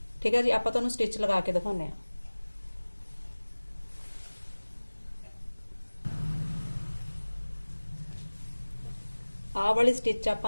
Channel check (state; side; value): inverted; both; correlation -1.00